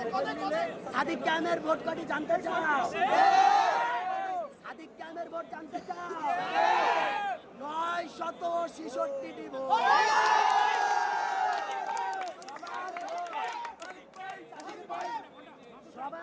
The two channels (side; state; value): both; identical; correlation 1.00